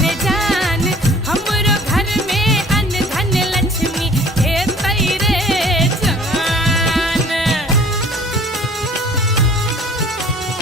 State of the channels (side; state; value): both; normal; correlation 0.51